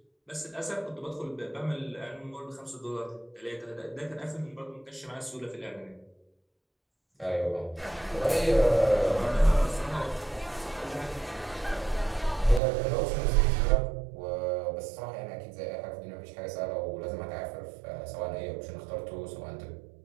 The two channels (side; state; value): left; drops out; at 12.6 s